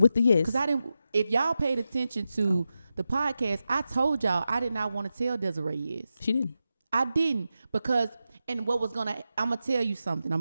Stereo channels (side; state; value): both; inverted; correlation -0.90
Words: the yes. Because if y'all paid attention to the podcast, I told y'all I did not want to tell Desiree yes. She didn't. I didn't, because, and I'm going to tell you something. I'm